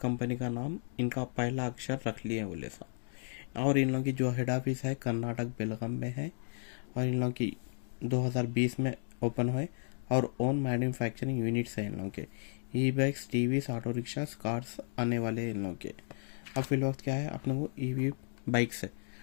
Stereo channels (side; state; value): right; silent; digital silence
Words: का नाम इनका पहला अक्षर रख लिए बोले सा। और इन लोगों की जो हेड ऑफिस है कर्नाटक बेलगाम में है। और इन लोगों की 2020 में ओपन हुए। और ओन मैन्युफैक्चरिंग यूनिट्स हैं इन लोगों के। E bikes, TVs, auto rickshaws, cars आने वाले हैं इन लोगों के। अब फिल वक्त क्या है अपने को ईवी बाइक्स है।